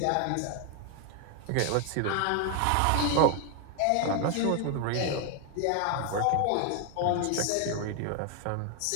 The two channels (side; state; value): both; different; correlation 0.00